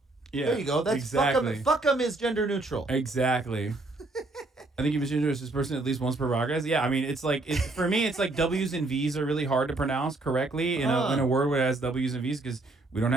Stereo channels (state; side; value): quieter; left; 3.0 dB